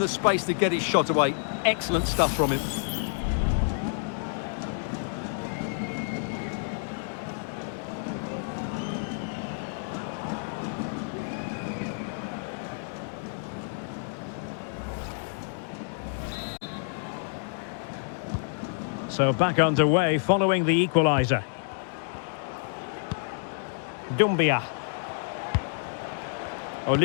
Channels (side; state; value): right; silent; digital silence